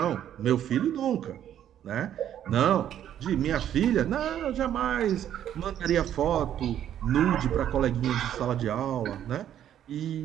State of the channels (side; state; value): left; quieter; 10.6 dB